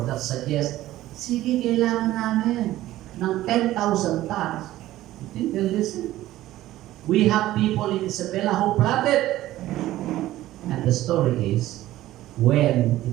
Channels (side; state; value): left; quieter; 15.1 dB